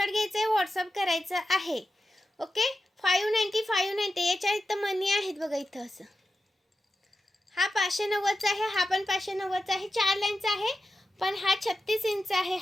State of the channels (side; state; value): both; normal; correlation 0.91